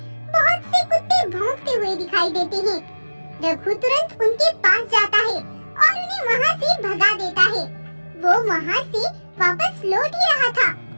बहुत से कुत्ते भौंकते हुए दिखाई देते हैं। रघु तुरंत उनके पास जाता है और उन्हें वहाँ से भगा देता है। वो वहाँ से वापस लौट ही रहा था,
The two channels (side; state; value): both; inverted; correlation -1.00